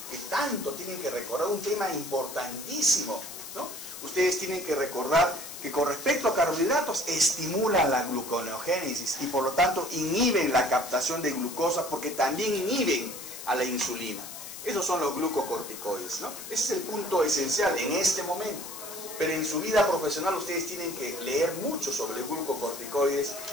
que tanto tienen que recordar, un tema importantísimo, ¿no? Ustedes tienen que recordar que con respecto a carbohidratos estimulan la gluconeogénesis y por lo tanto inhiben la captación de glucosa, porque también inhiben a la insulina. Esos son los glucocorticoides, ¿no? Ese es el punto esencial en este momento. Pero en su vida profesional ustedes tienen que leer mucho sobre los glucocorticoides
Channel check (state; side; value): noise; left; hiss, 11 dB below the sound